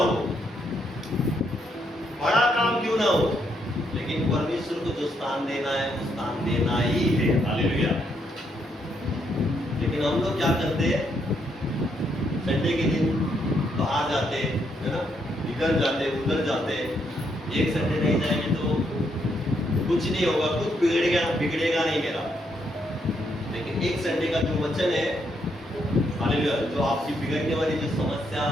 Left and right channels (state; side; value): normal; both; correlation 0.76